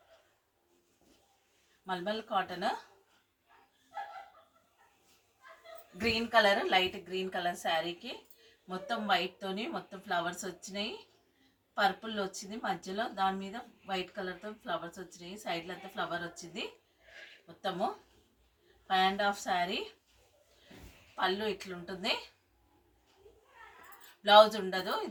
malmal cotton green colour, light green colour శారీకి మొత్తం వైట్తోని మొత్తం ఫ్లవర్స్ వచ్చినాయి. పర్పుల్ వచ్చింది మధ్యలో, దాని మీద వైట్ కలర్తో ఫ్లవర్స్ వచ్చినాయి. సైడ్లో అంతా ఫ్లవర్ వచ్చింది. మొత్తము 5.5 శారీ. పళ్ళు ఇట్లుంటుంది, బ్లౌజ్ ఉండదు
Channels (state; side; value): identical; both; correlation 1.00